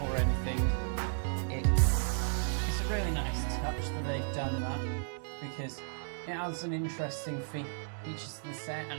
or anything. It's a really nice touch that they've done that, because it adds an interesting features to the set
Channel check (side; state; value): left; silent; digital silence